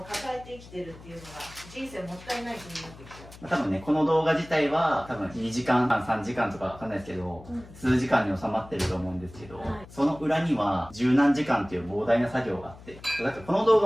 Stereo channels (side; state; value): left; noise; hum, 19 dB below the sound